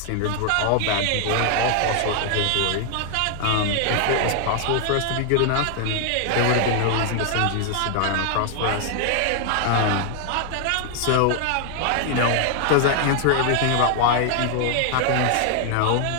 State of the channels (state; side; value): different; both; correlation 0.00